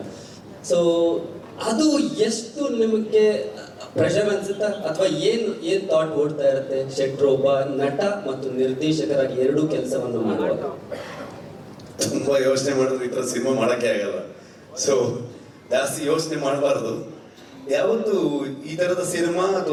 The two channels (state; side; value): identical; both; correlation 1.00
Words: So ಅದು ಎಷ್ಟು ನಿಮಗೆ ಪ್ರೆಷರ್ ಅನ್ಸುತ್ತಾ, ಅಥವಾ ಏನ್ ಥಾಟ್ ಓಡ್ತಾ ಇರುತ್ತೆ ಶೆಟ್ರು ಒಬ್ಬ ನಟ ಮತ್ತು ನಿರ್ದೇಶಕರಾಗಿ ಎರಡೂ ಕೆಲಸವನ್ನು ಮಾಡುವಾಗ? ತುಂಬಾ ಯೋಚನೆ ಮಾಡಿದ್ರೆ ಈ ಥರ ಸಿನಿಮಾ ಮಾಡೋಕ್ಕೆ ಆಗಲ್ಲ. ಸೊ ಜಾಸ್ತಿ ಯೋಚನೆ ಮಾಡಬಾರ್ದು. ಯಾವತ್ತು ಈ ಥರದ ಸಿನಿಮಾ